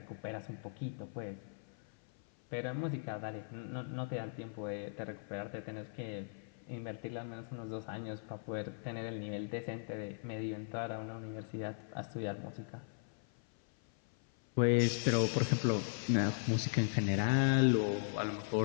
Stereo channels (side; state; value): right; silent; 52 dB below the other